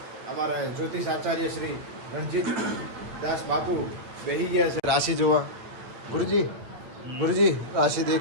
અમારા જ્યોતિષ આચાર્ય શ્રી રણજીત દાસ બાપુ બેહી ગયા છે રાશિ જોવા. ગુરુજી ગુરુજી રાશિ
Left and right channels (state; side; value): late; left; 8.8 ms